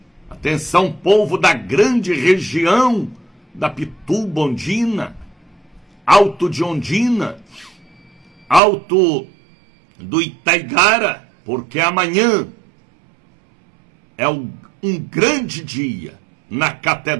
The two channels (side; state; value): left; drops out; at 8.6 s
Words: atenção, povo da grande região da Pituba, Ondina, Alto de Ondina, Alto do Itaigara, porque amanhã é um grande dia na